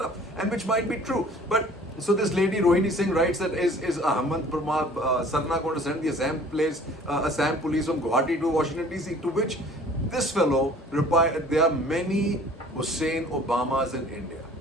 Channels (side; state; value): both; normal; correlation 0.50